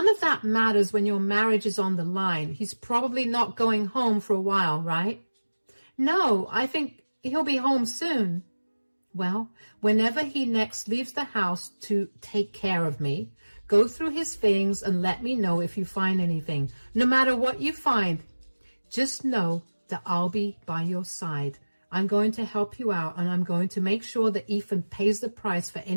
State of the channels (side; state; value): both; inverted; correlation -1.00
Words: of that matters when your marriage is on the line. He's probably not going home for a while, right?" "No, I think he'll be home soon." "Well, whenever he next leaves the house to take care of me, go through his things and let me know if you find anything. No matter what you find, just know that I'll be by your side. I'm going to help you out, and I'm going to make sure that Ethan pays the price for